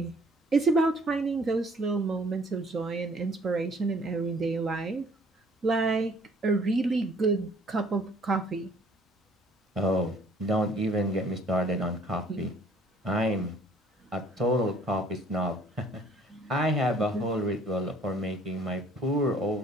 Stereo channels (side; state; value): both; normal; correlation 0.58